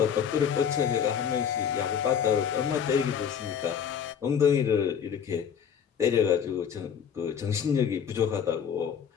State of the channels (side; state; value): right; quieter; 7.8 dB